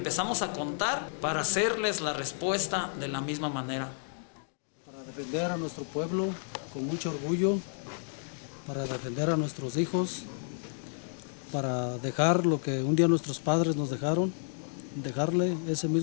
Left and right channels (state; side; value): silent; right; digital silence